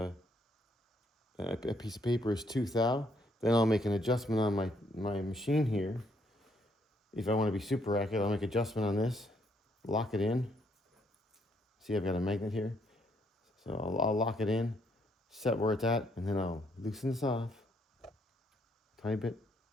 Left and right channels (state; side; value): normal; both; correlation 0.71